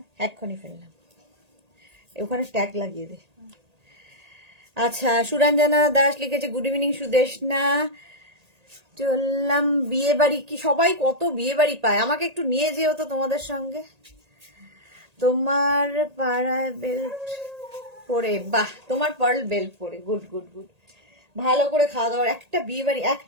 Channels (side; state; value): left; late; 1.8 ms